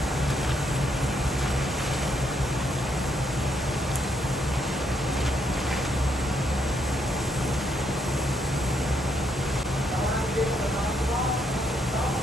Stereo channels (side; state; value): both; normal; correlation 0.75